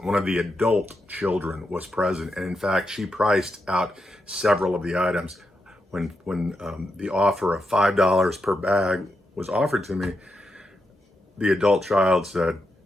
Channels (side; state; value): both; normal; correlation 0.84